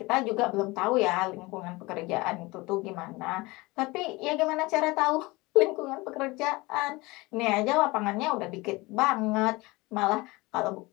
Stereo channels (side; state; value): right; quieter; 22.7 dB